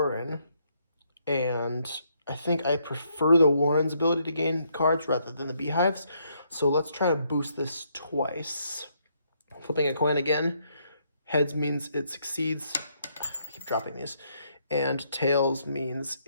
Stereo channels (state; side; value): inverted; both; correlation -0.73